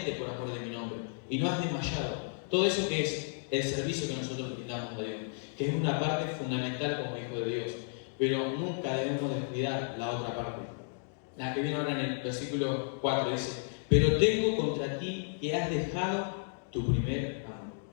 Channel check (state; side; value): silent; right; digital silence